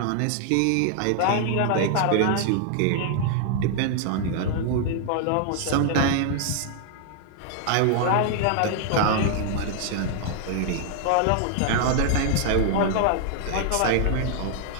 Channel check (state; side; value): different; both; correlation 0.00